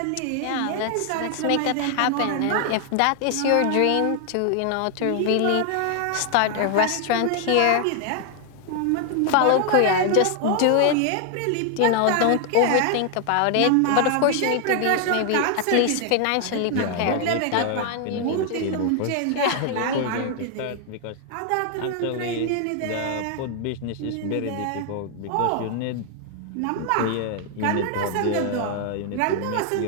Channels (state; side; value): different; both; correlation 0.00